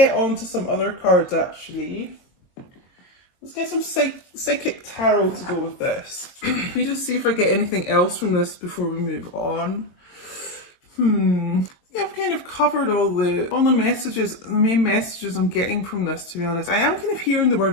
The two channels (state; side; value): late; right; 22 ms